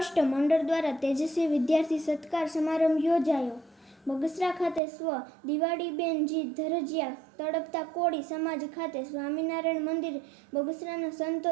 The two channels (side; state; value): left; drops out; at 4.8 s